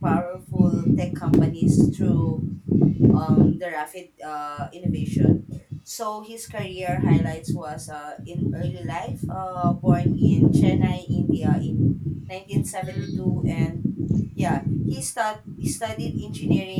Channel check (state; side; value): identical; both; correlation 1.00